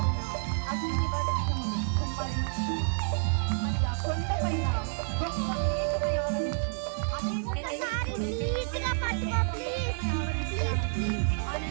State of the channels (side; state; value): left; silent; digital silence